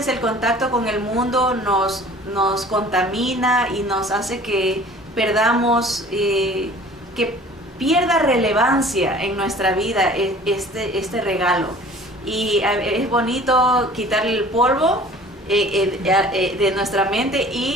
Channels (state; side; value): normal; both; correlation 0.47